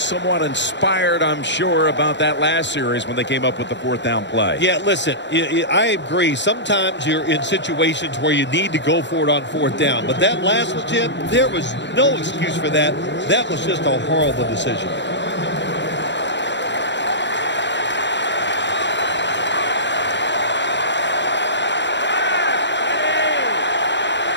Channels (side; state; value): right; late; 0.52 ms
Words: inspired, I'm sure, about that last series when they came up with the 4th down play. Yeah, listen, I agree. Sometimes you're in situations where you need to go for it on 4th down. But that last one, Jim, there was no excuse for that. That was just a horrible decision.